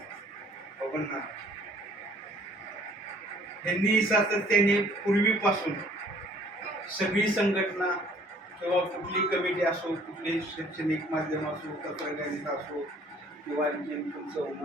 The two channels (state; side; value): normal; both; correlation 0.57